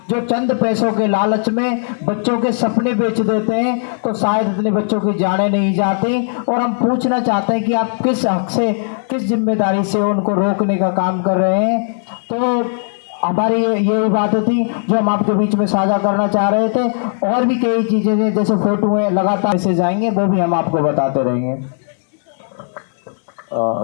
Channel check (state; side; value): silent; right; 68 dB below the other